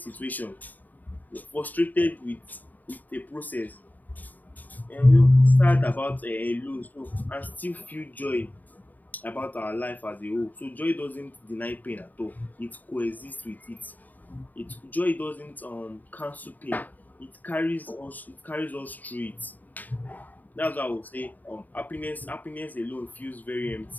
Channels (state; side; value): late; right; 0.083 ms